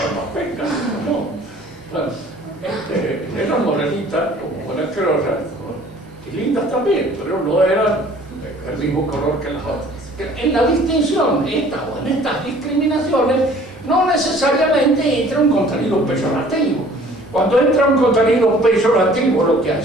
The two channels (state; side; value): normal; both; correlation 0.52